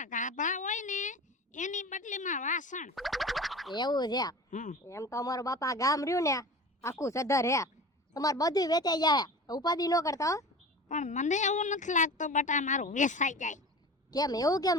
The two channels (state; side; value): normal; both; correlation 0.35